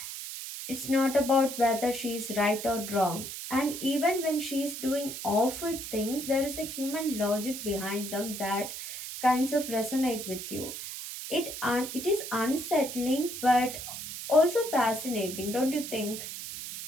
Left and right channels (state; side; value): noise; right; hiss, 8 dB below the sound